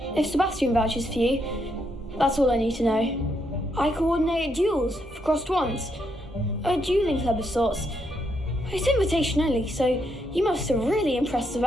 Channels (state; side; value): normal; both; correlation 0.77